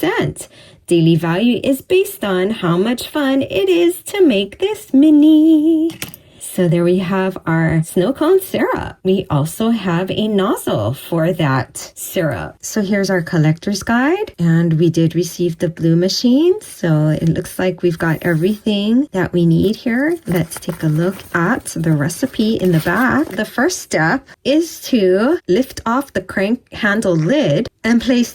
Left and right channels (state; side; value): identical; both; correlation 1.00